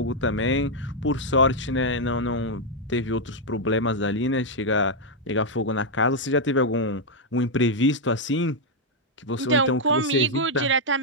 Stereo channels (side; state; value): both; normal; correlation -0.01